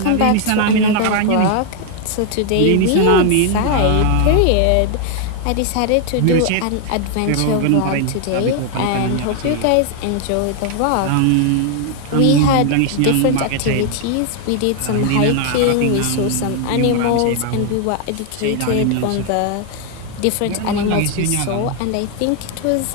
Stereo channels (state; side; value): different; both; correlation 0.00